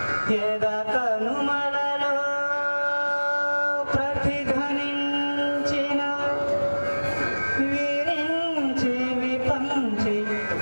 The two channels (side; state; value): both; inverted; correlation -1.00